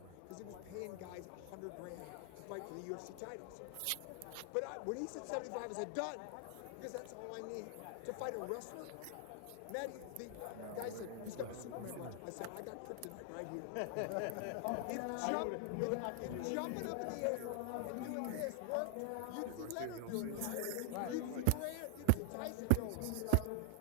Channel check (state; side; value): different; both; correlation 0.00